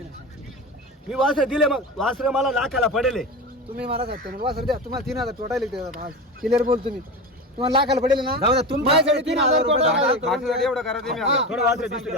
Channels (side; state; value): both; normal; correlation 0.25